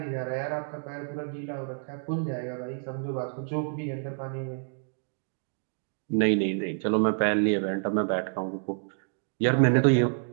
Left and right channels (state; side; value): silent; left; 59 dB below the other